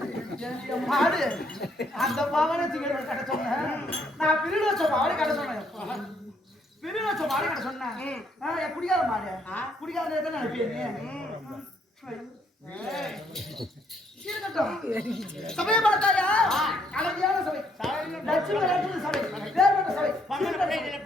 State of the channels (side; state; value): both; normal; correlation 0.70